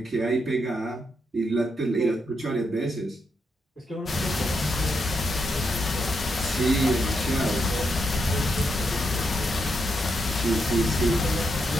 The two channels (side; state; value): both; normal; correlation 0.81